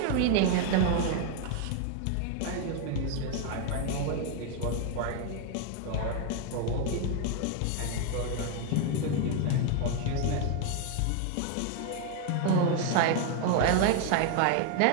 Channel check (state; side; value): different; both; correlation 0.01